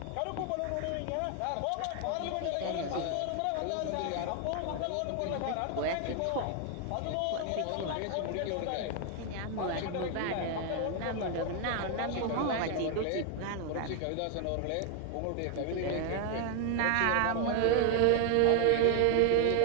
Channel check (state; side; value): different; both; correlation 0.01